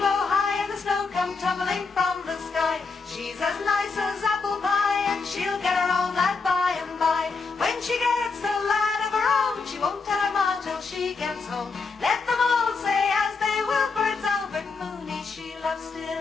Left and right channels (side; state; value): right; quieter; 4.6 dB